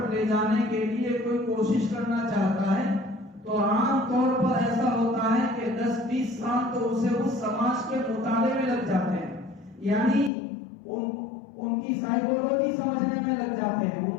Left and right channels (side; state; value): right; drops out; at 10.3 s